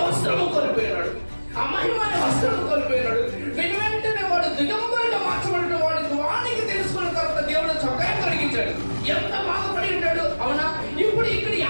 వస్త్రము కోల్పోయినాడు, ఆ మహిమ అనే వస్త్రము కోల్పోయినాడు. వెంటనే వాడు దిగంబరిగా మార్చబడిన వానికి తెలుసుకున్న తర్వాత దేవుడు చొక్కా కలిగించాడు. ఎంత బాధపడి ఉంటాడు, అవునా? ఇప్పుడు ఇక్కడ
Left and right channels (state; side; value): inverted; both; correlation -1.00